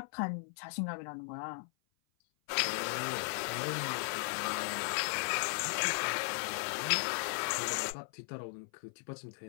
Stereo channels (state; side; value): silent; right; 53 dB below the other